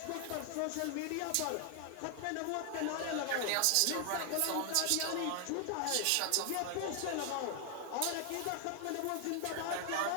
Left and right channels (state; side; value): different; both; correlation 0.00